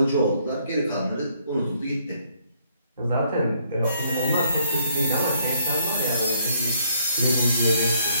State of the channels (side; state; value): both; inverted; correlation -0.68